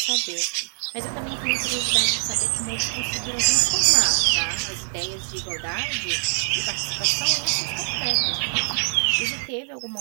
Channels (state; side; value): silent; left; digital silence